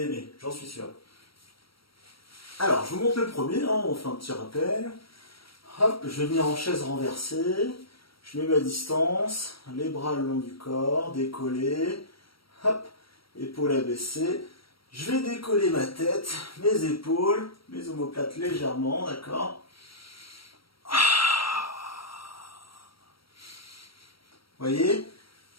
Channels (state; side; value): late; right; 0.75 ms